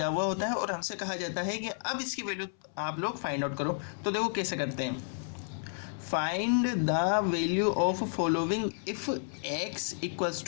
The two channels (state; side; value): silent; right; 57 dB below the other